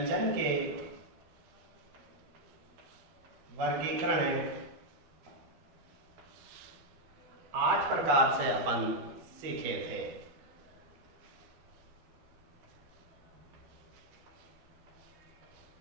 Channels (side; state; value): left; late; 12 ms